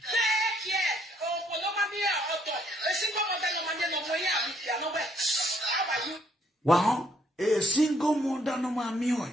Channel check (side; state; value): both; normal; correlation 0.68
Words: Wow, a single mother no mammy,